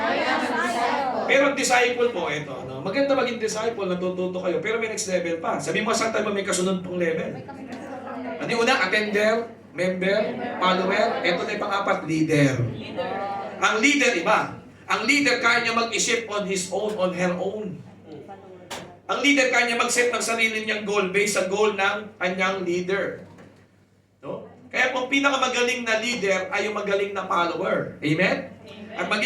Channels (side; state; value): both; identical; correlation 1.00